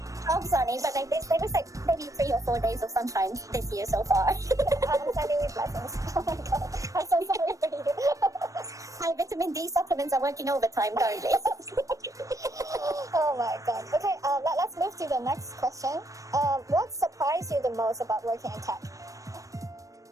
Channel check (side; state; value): left; late; 0.16 ms